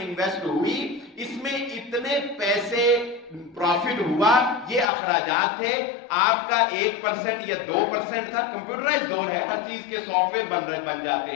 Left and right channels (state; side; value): drops out; right; at 4.9 s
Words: ہوئی، اس میں اتنے پیسے پروفٹ ہوا، یہ اخراجات تھے، آپ کا 1% یا 2% تھا. کمپیوٹرائز دور ہے، ہر چیز کے سافٹ ویئر بن جاتے